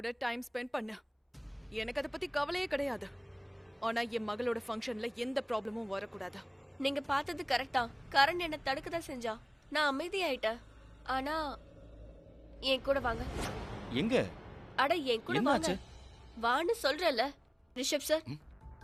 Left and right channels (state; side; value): identical; both; correlation 1.00